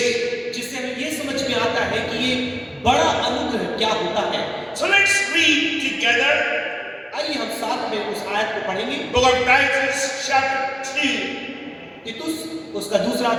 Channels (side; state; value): both; identical; correlation 1.00